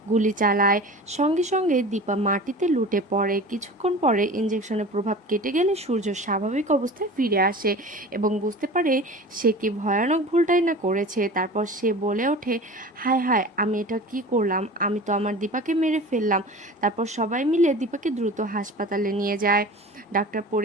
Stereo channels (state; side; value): normal; both; correlation 0.37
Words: গুলি চালায়। সঙ্গে সঙ্গে দীপা মাটিতে লুটে পড়ে। কিছুক্ষণ পরে ইঞ্জেকশনের প্রভাব কেটে গেলে সূর্য স্বাভাবিক অবস্থায় ফিরে আসে এবং বুঝতে পারে সে কি ভয়ানক ভুলটাই না করেছে। তারপর সে বলে ওঠে, হায় হায়, আমি এটা কি করলাম? আমি তো আমার দীপাকে মেরে ফেললাম। তারপর সবাই মিলে দীপাকে দ্রুত হাসপাতালে নিয়ে যায়। ডাক্তার